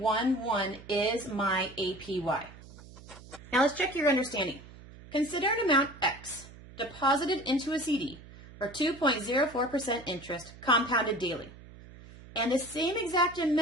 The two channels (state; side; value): noise; right; hum, 19 dB below the sound